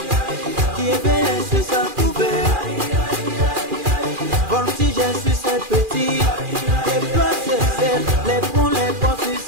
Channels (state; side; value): late; left; 2.4 ms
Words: qui éveille sur sa couvée. Voltige sur ses petits, les plots ses ailes, les ponts sur